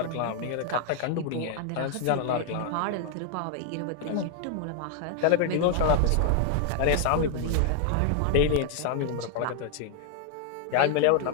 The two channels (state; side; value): different; both; correlation 0.00